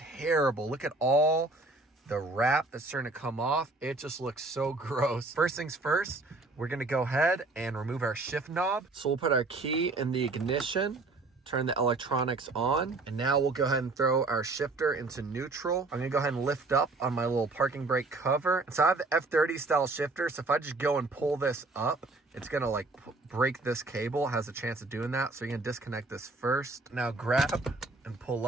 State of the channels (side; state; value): left; quieter; 3.3 dB